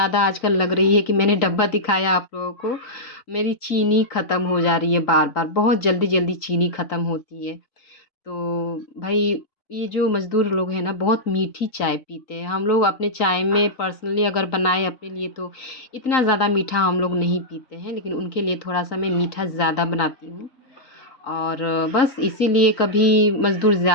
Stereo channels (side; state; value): right; late; 3.9 ms